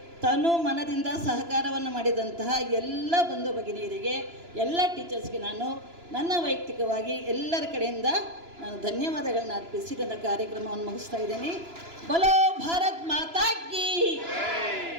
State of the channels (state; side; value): late; left; 2.9 ms